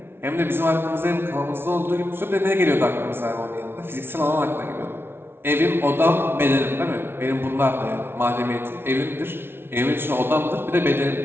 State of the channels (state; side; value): late; left; 0.11 ms